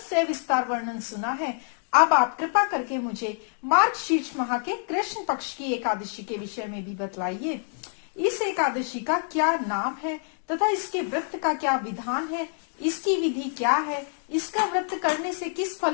वर्णन सुना है। अब आप कृपा करके मुझे मार्गशीर्ष माह के कृष्ण पक्ष की एकादशी के विषय में भी बतलाइए। इस एकादशी का क्या नाम है तथा इसके व्रत का क्या विधान है, इसकी विधि क्या है, इसका व्रत करने से किस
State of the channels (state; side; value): silent; right; 60 dB below the other